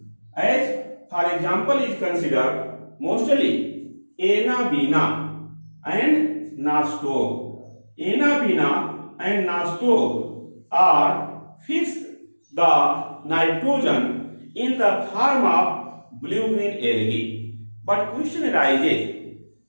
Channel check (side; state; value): both; inverted; correlation -1.00